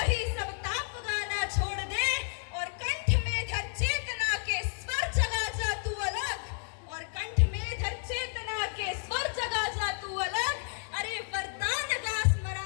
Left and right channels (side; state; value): right; silent; 57 dB below the other